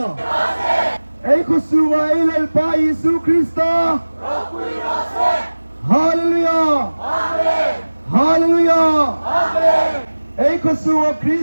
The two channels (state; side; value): inverted; both; correlation -1.00